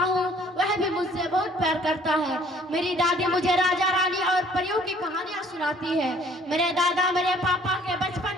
हूँ, वह भी मुझसे बहुत प्यार करता है। मेरी दादी मुझे राजा रानी और परियों की कहानियाँ सुनाती है। मेरे दादा मेरे पापा के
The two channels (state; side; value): normal; both; correlation 0.57